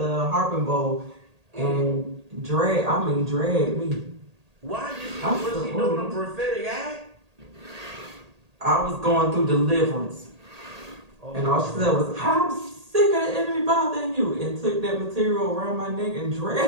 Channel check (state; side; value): late; left; 1.8 ms